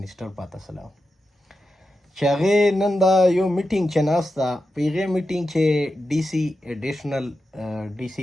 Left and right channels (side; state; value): both; normal; correlation 0.89